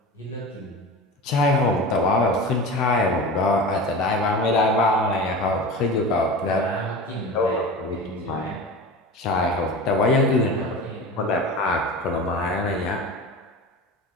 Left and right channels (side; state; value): both; normal; correlation 0.31